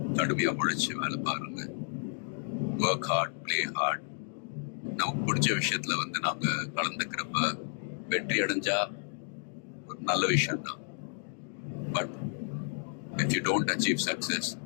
கடுமையா உழைச்சு வேலை பாருங்க. Work hard, play hard. நமக்கு பிடிச்ச விஷயத்துல நாம கலந்துக்கிறப்ப வெற்றி அடைஞ்சா ஒரு நல்ல விஷயம் தான். But if you don't achieve success,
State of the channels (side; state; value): right; silent; digital silence